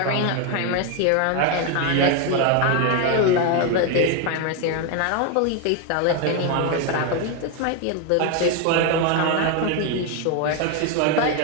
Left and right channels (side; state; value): both; different; correlation 0.01